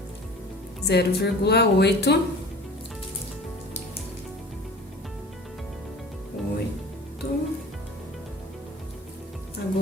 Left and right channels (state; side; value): normal; both; correlation 0.41